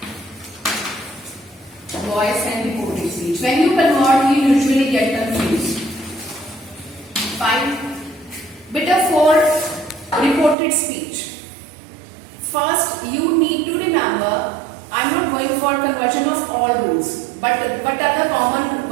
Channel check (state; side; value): drops out; left; at 10.6 s